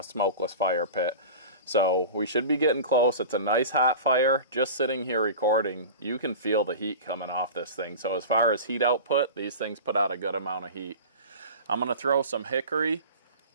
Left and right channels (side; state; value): both; inverted; correlation -0.33